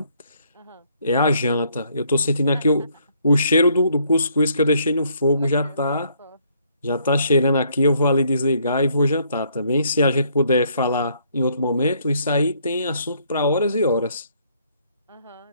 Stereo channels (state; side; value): inverted; both; correlation -0.68